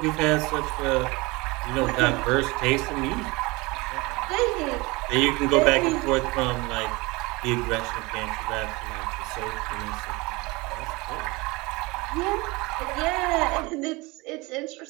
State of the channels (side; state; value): left; quieter; 24.1 dB